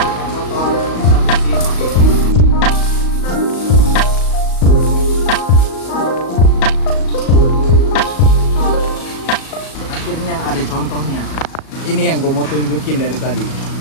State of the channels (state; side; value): late; right; 37 ms